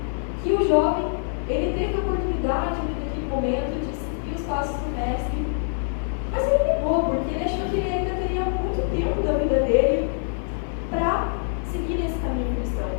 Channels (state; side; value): silent; right; 57 dB below the other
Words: que o jovem, ele teve a oportunidade naquele momento de seguir os passos do mestre, mas ele negou, porque ele achou que ele ainda teria muito tempo da vida dele para seguir nesse caminho cristão.